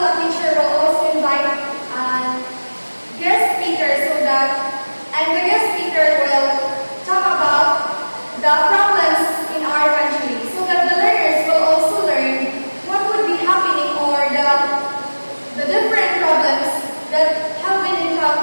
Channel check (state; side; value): inverted; both; correlation -1.00